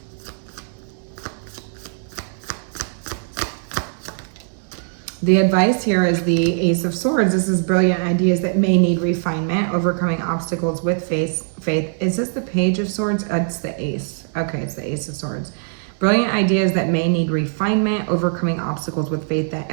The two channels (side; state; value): left; silent; digital silence